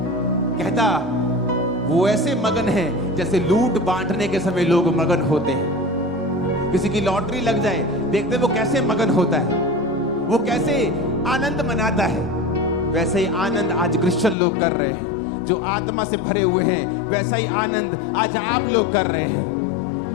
कहता वो ऐसे मगन हैं जैसे लूट बांटने के समय लोग मगन होते हैं। किसी की लॉटरी लग जाए, देखते वो कैसे मगन होता है, वो कैसे आनंद मनाता है। वैसे ही आनंद आज क्रिश्चियन लोग कर रहे हैं, जो आत्मा से भरे हुए हैं। वैसा ही आनंद आज आप लोग कर रहे हैं।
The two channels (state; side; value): drops out; right; at 14.4 s